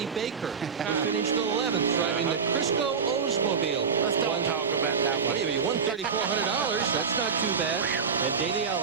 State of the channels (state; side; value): quieter; left; 6.0 dB